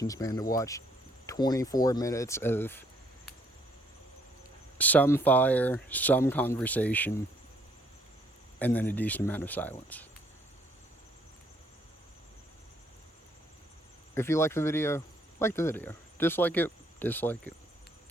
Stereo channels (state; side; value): normal; both; correlation 0.66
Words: span to watch 24 minutes of some fire, some conversation, and then a decent amount of silence. If you like the video, like the video. Dislike it, dislike it.